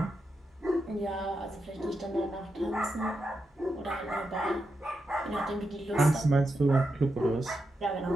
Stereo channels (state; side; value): normal; both; correlation 0.86